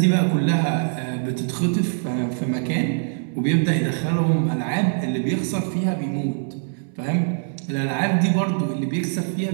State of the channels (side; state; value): left; silent; 64 dB below the other